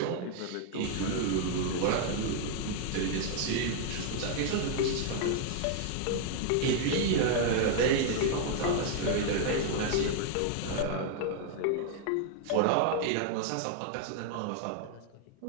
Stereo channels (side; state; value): both; different; correlation 0.00